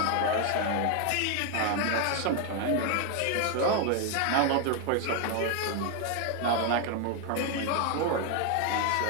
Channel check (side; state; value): both; different; correlation 0.01